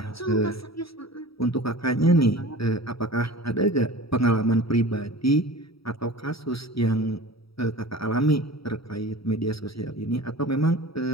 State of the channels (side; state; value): right; late; 0.76 ms